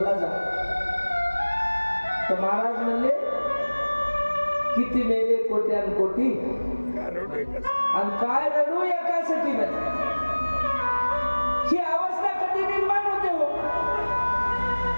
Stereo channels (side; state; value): both; inverted; correlation -1.00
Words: जा. तर महाराज म्हणले, किती मेले कोट्यान कोटी आणि काय रडू एकासाठी नाही. ही अवस्था कधी निर्माण होते हो.